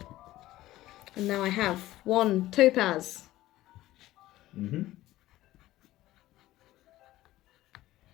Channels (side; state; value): right; quieter; 15.8 dB